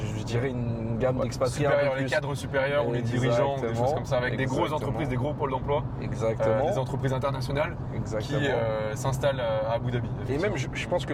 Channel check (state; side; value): identical; both; correlation 1.00